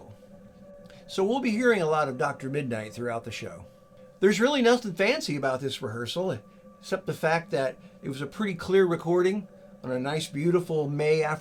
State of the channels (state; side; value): identical; both; correlation 1.00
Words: So we'll be hearing a lot of Dr. Midnight throughout the show. There's really nothing fancy about this rehearsal, except the fact that it was a pretty clear recording on a nice, beautiful May